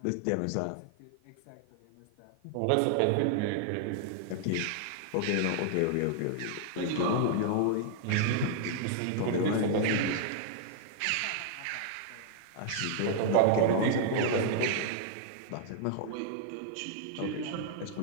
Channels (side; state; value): both; different; correlation 0.00